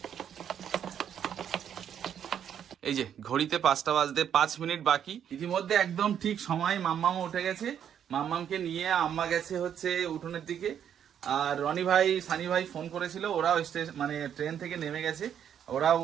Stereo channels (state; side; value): quieter; left; 9.0 dB